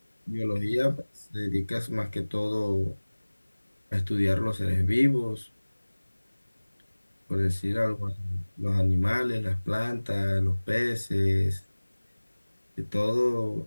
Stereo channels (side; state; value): both; inverted; correlation -1.00